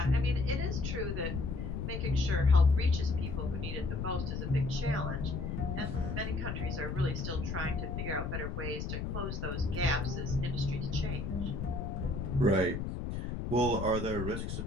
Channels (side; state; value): left; noise; rumble, 4 dB below the sound